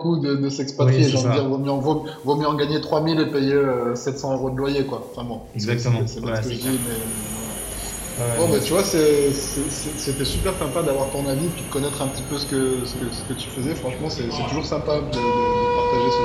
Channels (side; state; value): both; identical; correlation 1.00